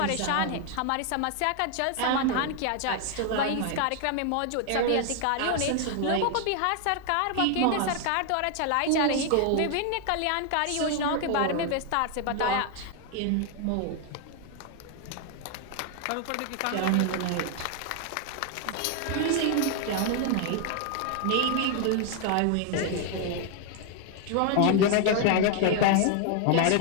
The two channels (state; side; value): different; both; correlation 0.00